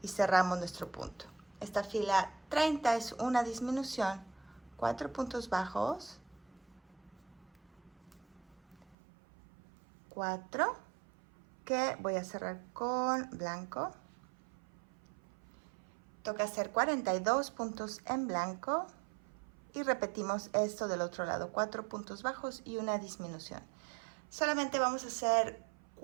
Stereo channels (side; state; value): left; drops out; at 9.0 s